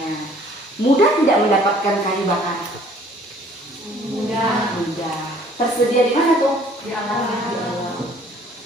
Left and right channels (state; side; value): normal; both; correlation 0.57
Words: Mudah tidak mendapatkan kayu bakar? Mudah. Mudah. Tersedia di mana tuh? Di alam.